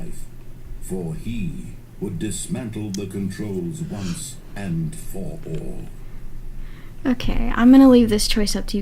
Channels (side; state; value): both; identical; correlation 1.00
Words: For he would dismantle the controls once and for all. Okay, I'm gonna leave this choice up to you